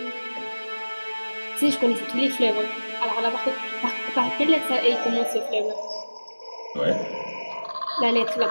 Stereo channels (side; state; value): both; inverted; correlation -1.00